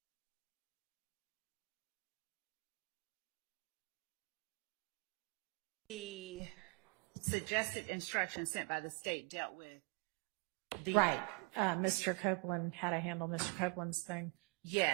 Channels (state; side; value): quieter; left; 29.3 dB